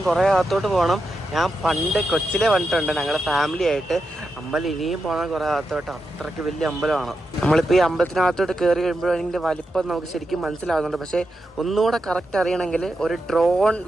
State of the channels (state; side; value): normal; both; correlation 0.87